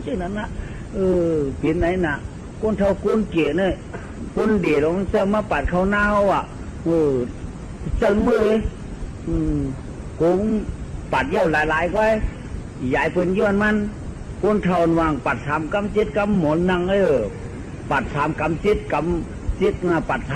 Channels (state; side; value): identical; both; correlation 1.00